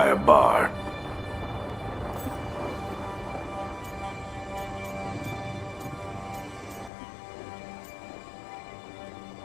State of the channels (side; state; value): right; drops out; at 6.9 s